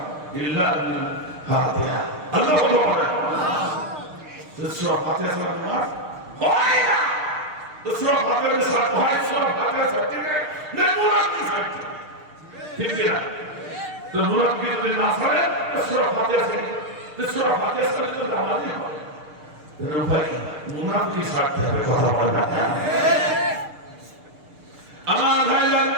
ইল্লা বিল ফাতিহা, আল্লাহ বলে সূরা ফাতিহা ছাড়া নামাজ হয় না। তো সূরা ফাতিহা ছাড়া হয়, সূরা ফাতিহা ছাড়তে না মুনাফিক ছাড়তে, ঠিক না? তো মুনাফিক যদি না ছাড়ে সূরা ফাতিহা ছাড়ে, তো সূরা ফাতিহা ছাড়লে তো নামাজই হবে। উপায় কি? মুনাফিক ছাড়তে হবে, কথা বলে না। আমার ভাইরা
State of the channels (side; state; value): left; late; 6.5 ms